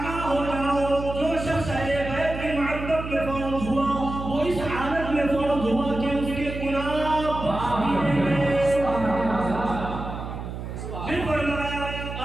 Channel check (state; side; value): noise; right; hum, 7 dB below the sound